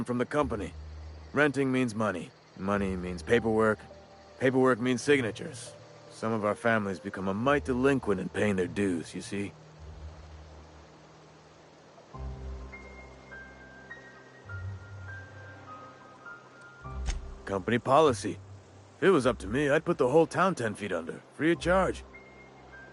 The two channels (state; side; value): identical; both; correlation 1.00